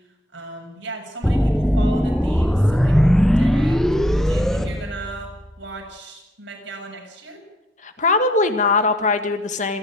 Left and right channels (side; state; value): both; normal; correlation 0.68